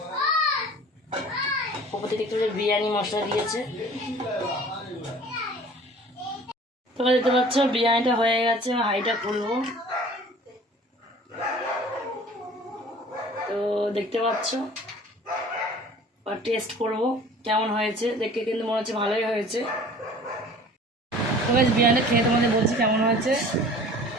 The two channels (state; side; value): normal; both; correlation 0.46